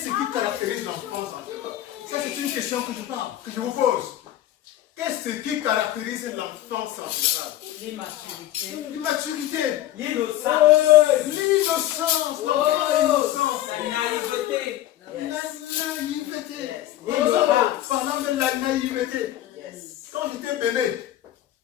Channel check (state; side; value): quieter; right; 13.5 dB